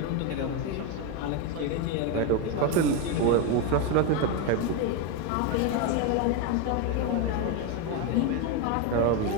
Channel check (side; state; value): both; different; correlation 0.03